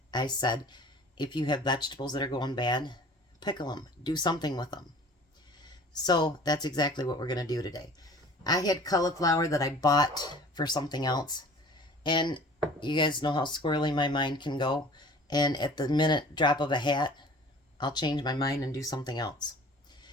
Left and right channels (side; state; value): both; normal; correlation 0.46